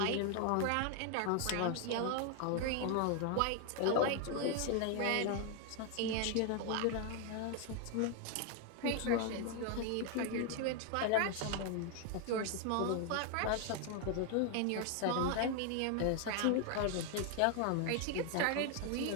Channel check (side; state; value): both; different; correlation 0.00